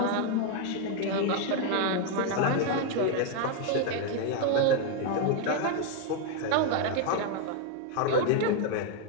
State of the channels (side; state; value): both; different; correlation 0.01